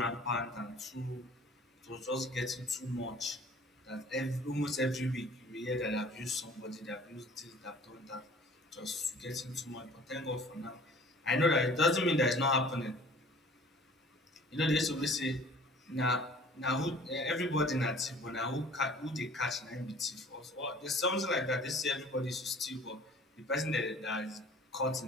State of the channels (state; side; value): normal; both; correlation 0.49